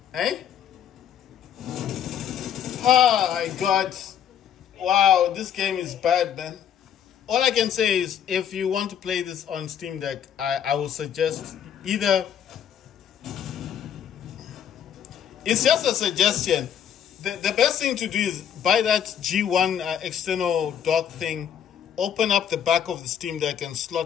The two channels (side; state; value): right; quieter; 9.1 dB